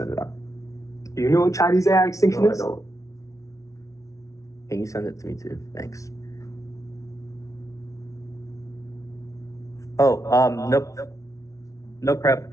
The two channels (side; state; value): right; late; 0.16 ms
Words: it out. Do you know what Chinese AI extinction No, I is? don't. Can you send it to me too? Thanks. Oh, nope. No prep.